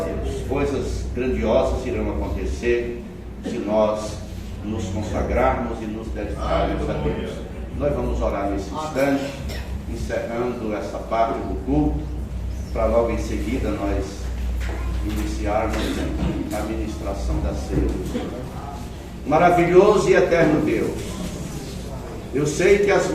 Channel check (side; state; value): both; identical; correlation 1.00